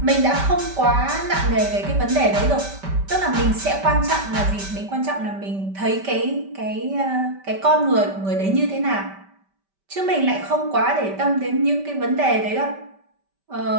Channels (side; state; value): left; late; 5.1 ms